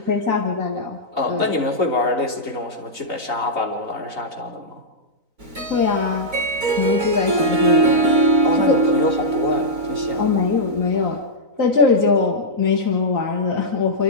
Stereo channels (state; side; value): late; left; 3.9 ms